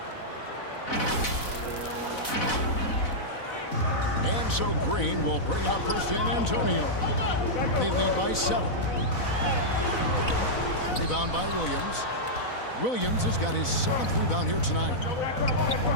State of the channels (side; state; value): right; late; 4.0 ms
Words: And so Green will bring it up for San Antonio. They lead by 7. Rebound by Williams. Williams has got his 7th rebound here tonight.